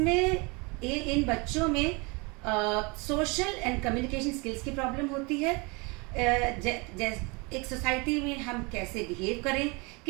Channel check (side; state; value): left; quieter; 28.7 dB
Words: इन बच्चों में सोशल एंड कम्युनिकेशन स्किल्स की प्रॉब्लम होती है। एक सोसाइटी में हम कैसे बिहेव करें,